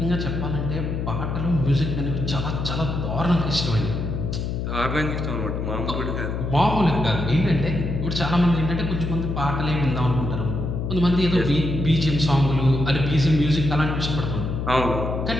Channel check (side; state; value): left; noise; hum, 3 dB below the sound